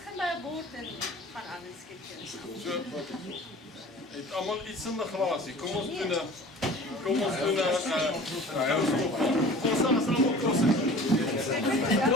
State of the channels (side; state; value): both; normal; correlation 0.43